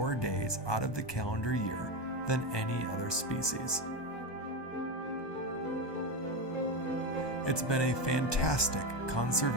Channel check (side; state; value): right; late; 1.2 ms